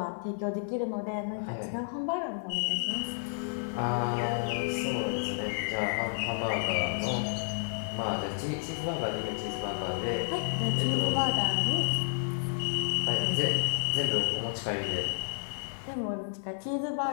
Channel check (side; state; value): right; silent; 57 dB below the other